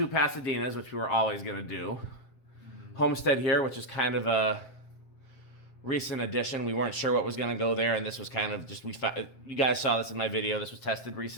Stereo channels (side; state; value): right; late; 7.6 ms